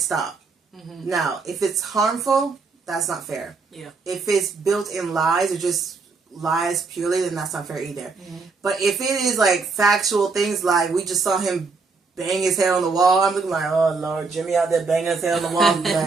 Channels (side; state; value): left; quieter; 4.4 dB